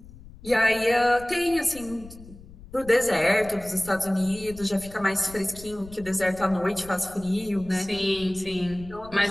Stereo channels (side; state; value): left; noise; rumble, 18 dB below the sound